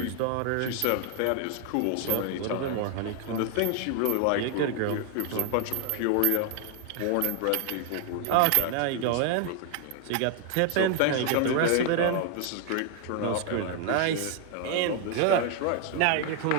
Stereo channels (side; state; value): both; different; correlation 0.00